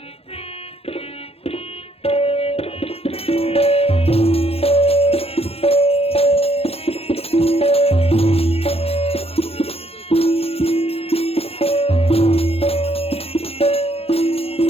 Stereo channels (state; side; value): late; right; 0.29 ms